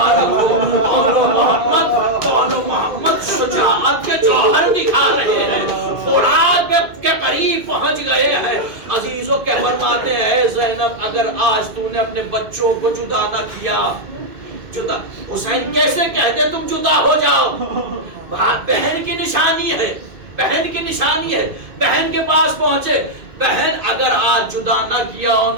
ہو، دونوں محمد شجاعت کے جوہر دکھا رہے ہیں، فرات کے قریب پہنچ گئے ہیں۔ عزیزوں کے فرماتے ہیں زینب اگر آج تو نے اپنے بچوں کو جدا نہ کیا، جدا حسین کیسے کہتے تم جدا ہو جاؤ؟ بہن کی نشانی ہے، بہن کی نشانی ہے، بہن کے پاس پہنچے، بہن اگر آج جدا نہ کیا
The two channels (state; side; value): late; left; 2.5 ms